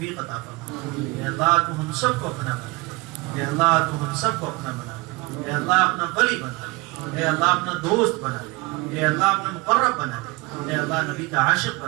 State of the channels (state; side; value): quieter; left; 25.0 dB